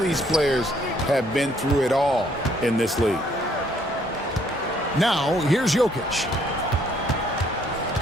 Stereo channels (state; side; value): normal; both; correlation 0.66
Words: these players have been through it all in this league. Now, here's Jokic.